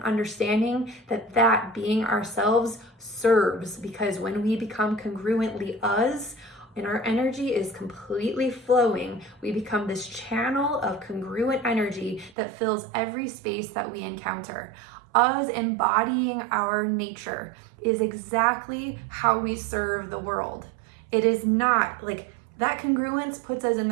understanding that being ourselves serves, because when we become congruently us, and our energy is completely flowing, we become this channel of congruent energy that fills every space that we encounter. Us embodying our nature is exactly how we serve the world. It is not like that congruence puts us in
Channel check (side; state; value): left; drops out; at 12.3 s